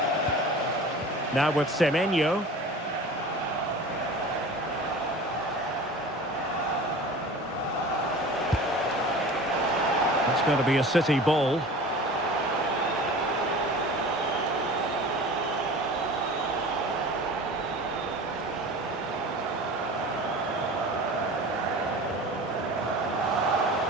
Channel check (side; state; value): both; normal; correlation 0.38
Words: Now with Semenyo. It's going to be a City ball.